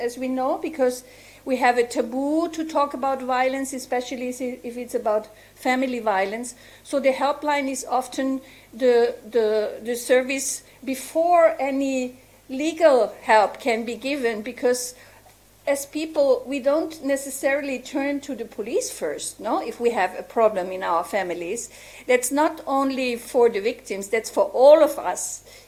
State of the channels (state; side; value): identical; both; correlation 1.00